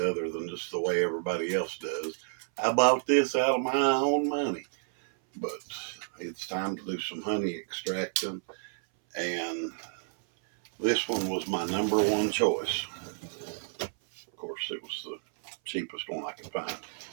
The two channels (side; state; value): left; silent; 57 dB below the other